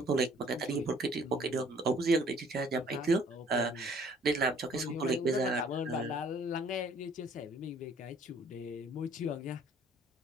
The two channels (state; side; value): normal; both; correlation 0.58